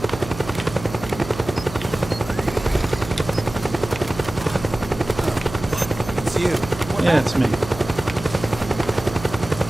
It's you. Yeah, it's me.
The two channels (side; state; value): right; noise; hum, 12 dB below the sound